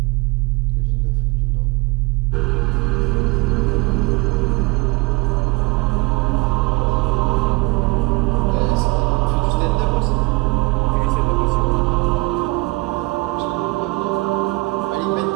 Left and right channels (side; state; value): left; quieter; 23.4 dB